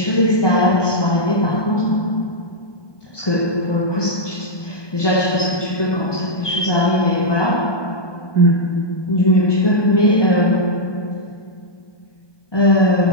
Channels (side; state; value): right; late; 1.2 ms